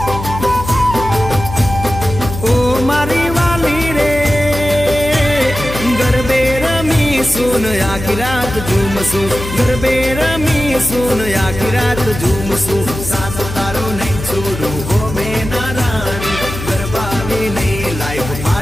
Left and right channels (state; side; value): noise; left; hum, 8 dB below the sound